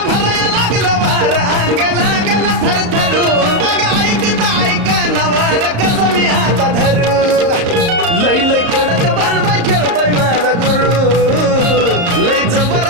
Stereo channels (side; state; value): left; late; 34 ms